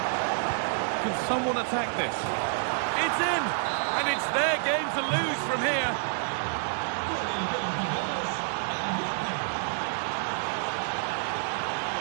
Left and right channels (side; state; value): left; silent; 59 dB below the other